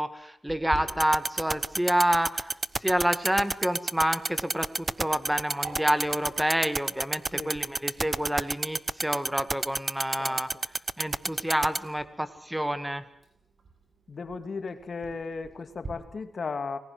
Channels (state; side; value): normal; both; correlation 0.98